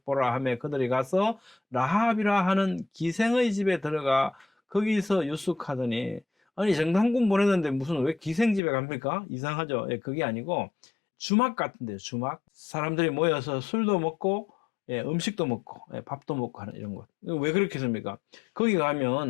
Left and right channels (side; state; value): right; drops out; at 8.6 s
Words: 하며 그들이 가서 라합이라 하는 기생의 집에 들어가 거기서 유숙하더니, 아니 정탐꾼 보냈는데 무슨 왜 기생 집에 갑니까? 이상하죠. 그게 아니고 주막 같은데요. 주막. 사람들이 모여서 술도 먹고 음식도 먹고 밥도 먹고 하는 이런 것. 왜 그렇게 했습니까? 거기